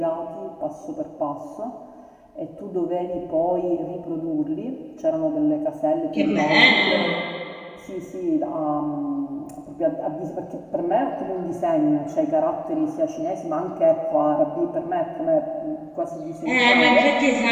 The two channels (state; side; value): identical; both; correlation 1.00